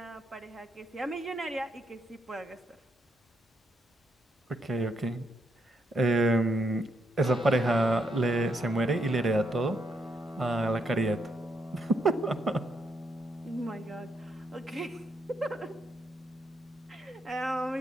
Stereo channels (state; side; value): normal; both; correlation 0.77